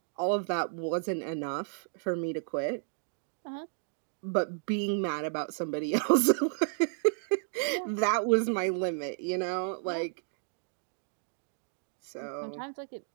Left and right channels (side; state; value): left; silent; digital silence